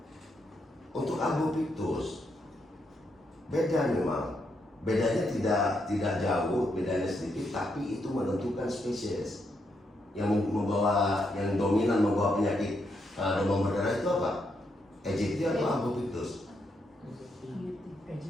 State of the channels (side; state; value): both; normal; correlation 0.79